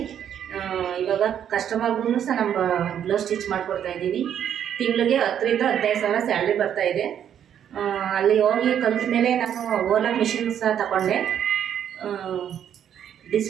ಇವಾಗ ಕಸ್ಟಮರ್ಗೂ ಸಹ ನಮ್ಮ ಬ್ಲೌಸ್ ಸ್ಟಿಚ್ ಮಾಡಿಕೊಡ್ತಾಯಿದ್ದೀನಿ. ತಿಂಗಳಿಗೆ 10,000 ರಿಂದ 15,000 ಸ್ಯಾಲ್ರಿ ಬರ್ತಾಯಿದೆ. ಅಲ್ಲಿ ಹೋಗಿ ಕಲಿತ ಮೇಲೆ ನಾನು ಓಲಾ ಮಿಷಿನ್ ಸಹ ತಗೊಂಡೆ.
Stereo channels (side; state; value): left; quieter; 9.4 dB